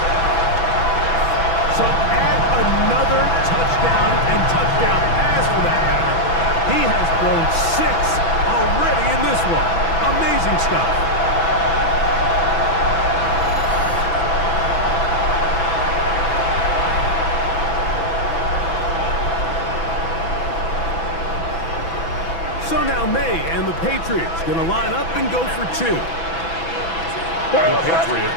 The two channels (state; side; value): late; right; 6.0 ms